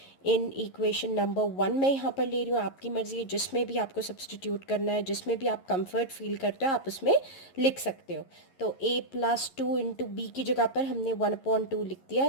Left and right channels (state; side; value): late; right; 11 ms